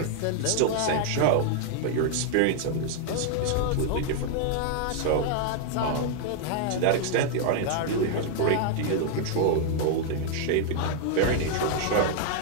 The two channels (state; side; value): different; both; correlation 0.00